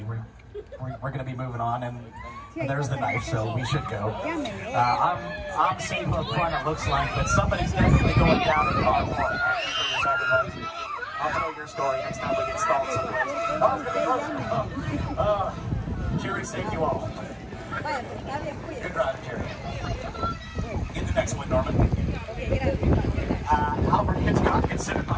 We're going to be moving on, and there's the knife, so we should go. I'm safe up front, it looks like, but somebody's definitely going down in car 4. I'll tell your story next time we get stalled someplace. Oh, Jerry saved you all. Good driving, Jerry. Get the next one, Norman. Alfred Hitchcock, considered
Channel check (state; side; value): identical; both; correlation 1.00